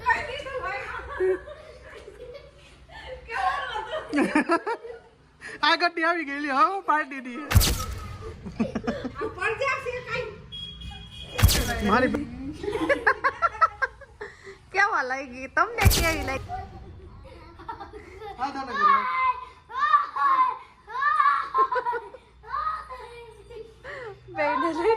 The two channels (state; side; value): identical; both; correlation 1.00